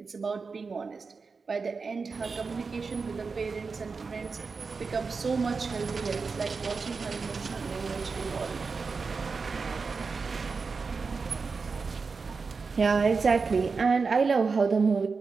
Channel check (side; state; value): left; quieter; 4.7 dB